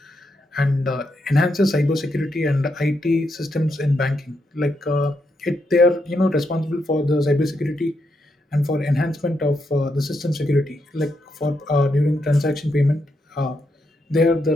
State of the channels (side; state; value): both; normal; correlation 0.81